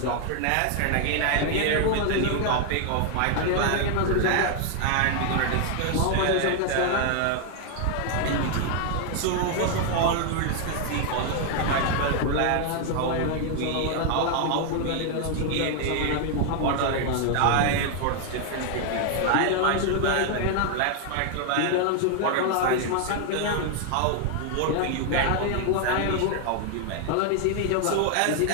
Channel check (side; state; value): both; different; correlation 0.00